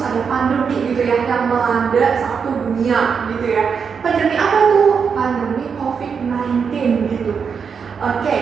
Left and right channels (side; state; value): left; quieter; 6.2 dB